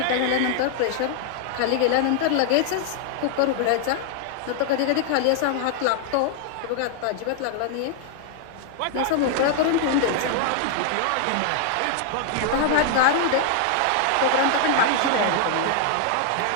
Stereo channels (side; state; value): both; different; correlation 0.00